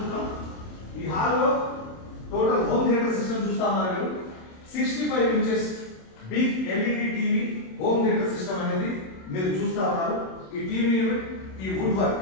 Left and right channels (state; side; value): late; right; 27 ms